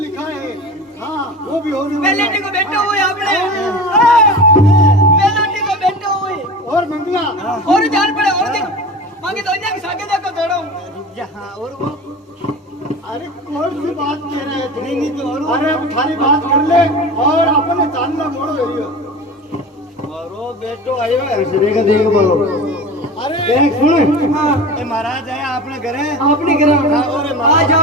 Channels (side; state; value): both; normal; correlation 0.33